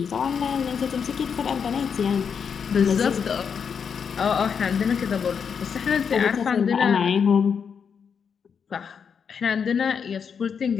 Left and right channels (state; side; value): quieter; right; 6.7 dB